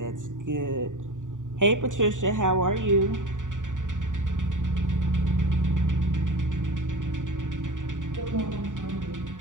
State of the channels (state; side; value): late; left; 0.87 ms